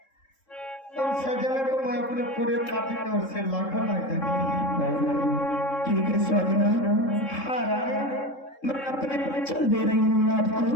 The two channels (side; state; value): right; late; 3.7 ms